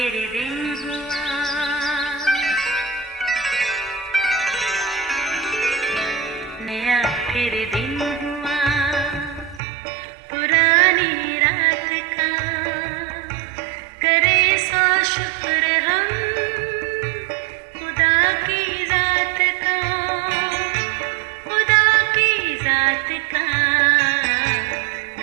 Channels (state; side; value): drops out; left; at 9.6 s